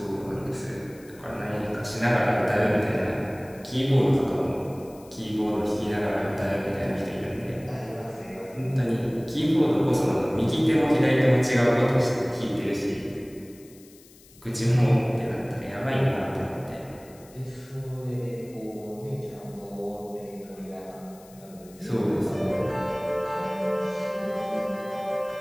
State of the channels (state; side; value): noise; left; hiss, 25 dB below the sound